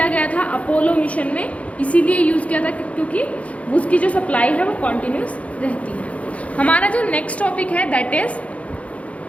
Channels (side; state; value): right; late; 0.065 ms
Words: गया था अपोलो मिशन में, इसीलिए यूज़ किया था क्योंकि उसकी जो सप्लाई है वो कॉन्टिन्यूस रहती है. हमारा जो नेक्स्ट टॉपिक है दैट इज